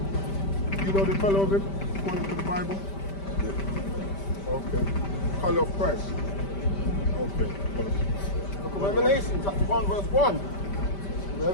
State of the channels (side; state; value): right; late; 5.1 ms